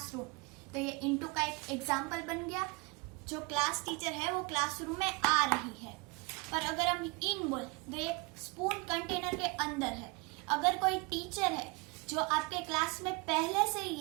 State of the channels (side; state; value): left; quieter; 28.3 dB